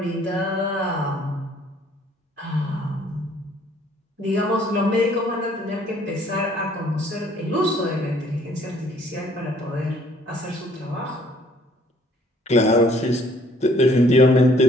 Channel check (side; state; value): both; normal; correlation 0.61